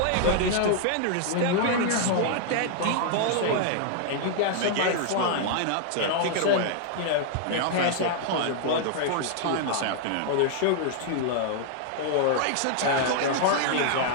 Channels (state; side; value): different; both; correlation 0.00